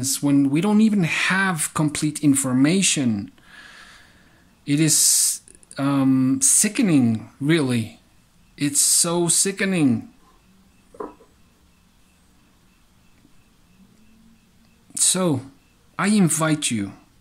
when we don't even have complete information? It is sickening, really. It's so sickening. So, I invite you,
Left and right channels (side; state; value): both; identical; correlation 1.00